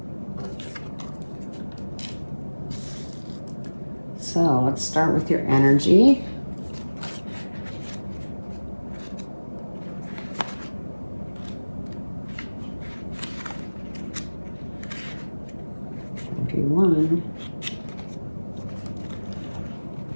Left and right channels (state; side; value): inverted; both; correlation -1.00